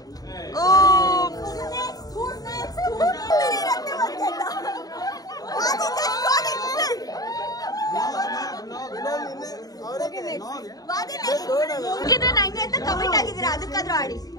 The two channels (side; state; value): right; late; 0.18 ms